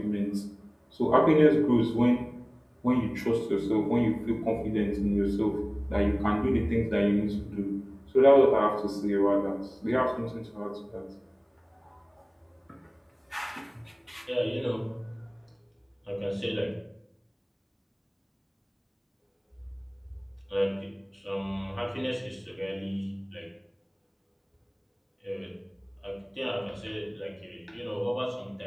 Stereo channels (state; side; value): identical; both; correlation 1.00